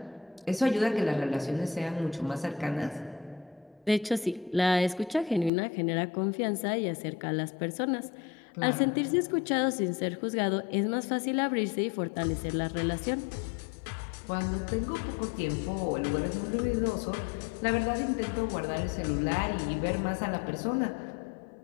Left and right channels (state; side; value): drops out; right; at 5.5 s